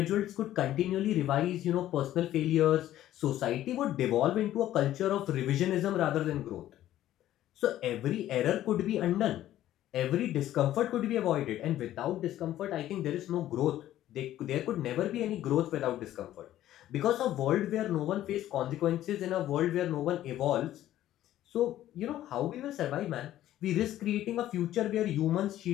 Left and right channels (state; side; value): quieter; right; 13.2 dB